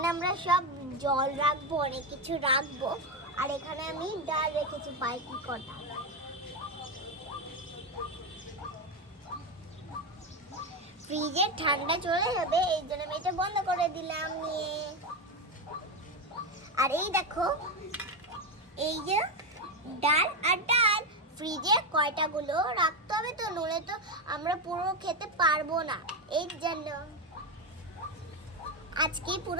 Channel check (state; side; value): normal; both; correlation 0.12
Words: আমরা সব জল রাখবো, অনেক কিছু রাখবো। আর এখানে আমি ডাল রেখেছি বাইকি কটা। ফ্রিজে ঠান্ডা চলে যাবে, এই জন্য আমি এটা বন্ধ করে দিলাম নিয়ে। আর এই দেখো এই যে ডাল আর ডাল, ফ্রিজে কয়টা গুলো রাখতে হবে, তো নলে তো আমরা পুরো খেতে পারবো না। এই জন্য আজকে